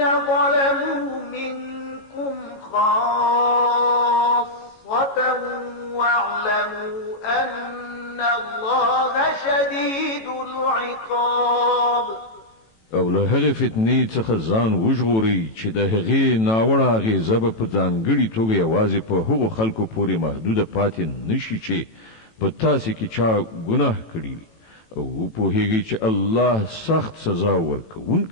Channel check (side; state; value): right; late; 18 ms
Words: ظلموا منكم خاصة واعلموا أن الله شديد العقاب. او له هغې فتنې څخه ځان وژغورئ چې د هغې ناوړه اغېزه به په ځانګړې توګه یوازې په هغو خلکو پورې محدوده پاتې نشي چې په تاسې کې چا ګناه کړي او وپوهیږئ چې الله سخت سزا